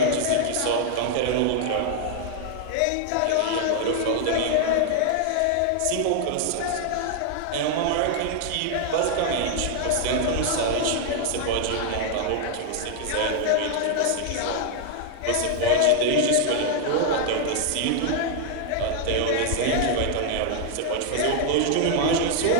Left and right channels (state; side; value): different; both; correlation 0.00